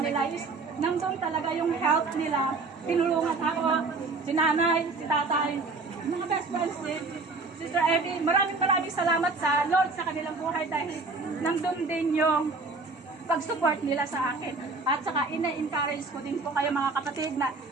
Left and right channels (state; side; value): quieter; left; 3.8 dB